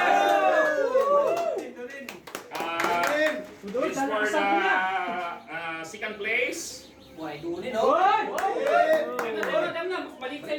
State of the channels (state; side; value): identical; both; correlation 1.00